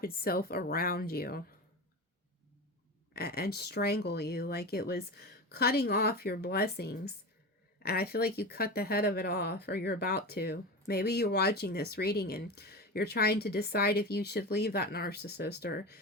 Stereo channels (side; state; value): both; normal; correlation 0.26